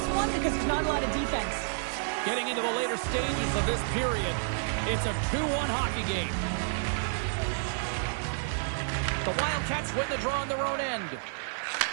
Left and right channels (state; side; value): silent; left; 56 dB below the other